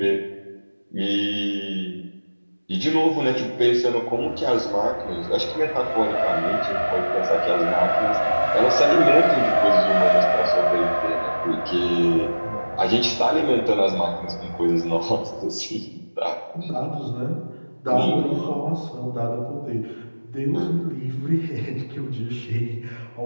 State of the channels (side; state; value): both; inverted; correlation -1.00